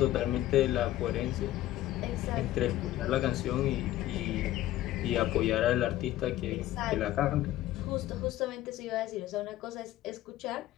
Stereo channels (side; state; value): right; quieter; 14.6 dB